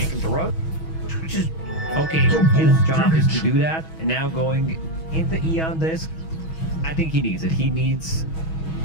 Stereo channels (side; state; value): right; late; 6.2 ms